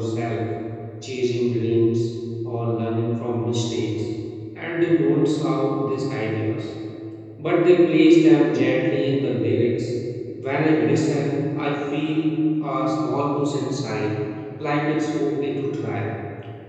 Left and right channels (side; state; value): both; identical; correlation 1.00